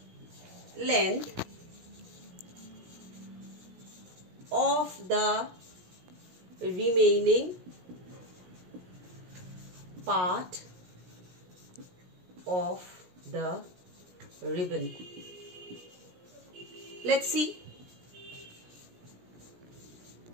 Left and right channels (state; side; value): late; left; 17 ms